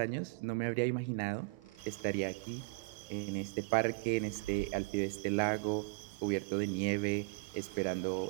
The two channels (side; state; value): left; quieter; 31.0 dB